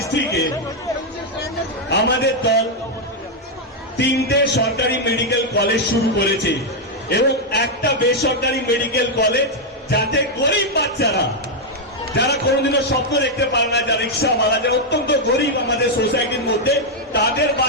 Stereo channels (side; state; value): both; normal; correlation -0.01